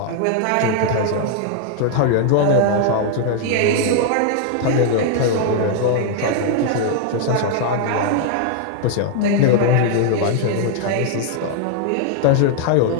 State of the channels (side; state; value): both; different; correlation 0.00